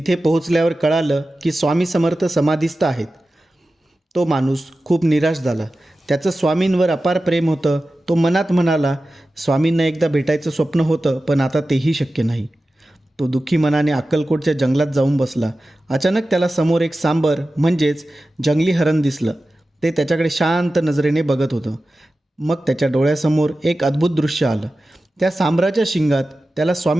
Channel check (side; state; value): both; normal; correlation 0.94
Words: पोहोचल्यावर कळालं की स्वामी समर्थ समाधीस्थ आहेत. तो माणूस खूप निराश झाला. त्याचं स्वामींवर अपार प्रेम होतं. तो मनात म्हणाला, स्वामींना एकदा भेटायचं स्वप्न होतं, पण आता तेही शक्य नाही. तो दुःखी मनाने अक्कलकोटच्या जंगलात जाऊन बसला. अचानक त्याला समोर एक सांबर म्हणजेच जंगली हरण दिसलं. ते त्याच्याकडे शांत नजरेने बघत होतं. मग त्याच्या डोळ्यासमोर एक अद्भुत दृश्य आलं. त्या सांबराच्या शिंगात त्याला